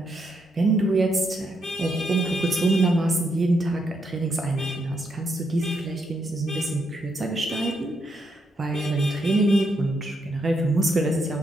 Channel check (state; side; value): normal; both; correlation 0.79